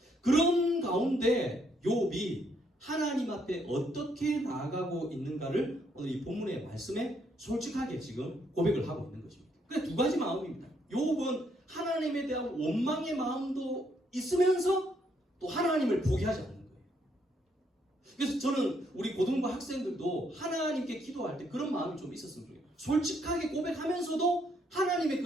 그런 가운데 욥이 하나님 앞에 어떻게 나아가고 있는가를 오늘 이 본문의 말씀에 솔직하게 지금 고백을 하고 있는 것입니다. 그래서 두 가지 마음입니다. 욥은 하나님에 대한 원망의 마음도 있으면서 또 하나님을 포기하지 않는 거예요. 그래서 저는 우리 고등부 학생들도 하나님께 기도할 때 그런 마음이 좀 있었으면 좋겠어요. 솔직하게 고백하면서도 하나님의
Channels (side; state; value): both; normal; correlation 0.72